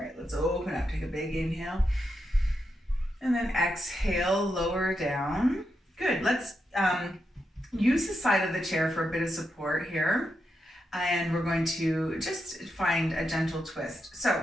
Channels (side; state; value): both; normal; correlation 0.85